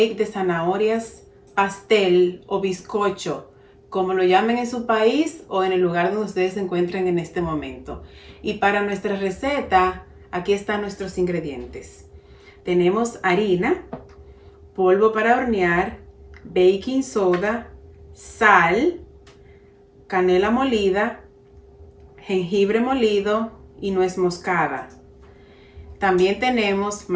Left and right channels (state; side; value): identical; both; correlation 1.00